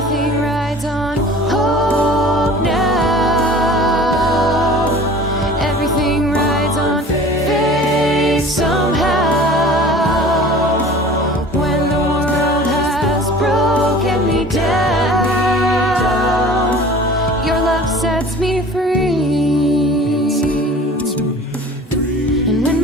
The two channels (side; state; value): both; normal; correlation 0.44